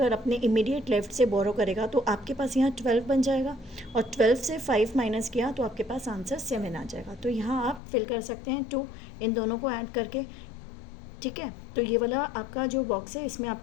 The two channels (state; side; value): drops out; right; at 7.8 s